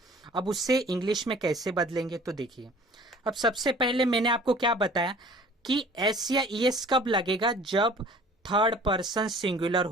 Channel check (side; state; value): both; normal; correlation 0.49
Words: अब उससे इंग्लिश में कैसे बदलेंगे? तो देखिए, अब सबसे पहले मैंने आपको क्या बताया कि एस या ईएस कब लगेगा? जब थर्ड पर्सन सिंगुलर